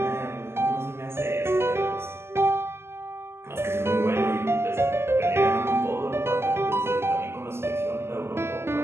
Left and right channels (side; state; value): left; late; 0.12 ms